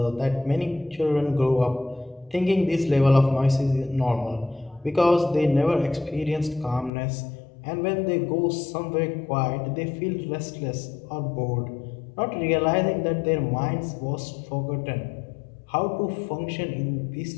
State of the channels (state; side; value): drops out; right; at 6.9 s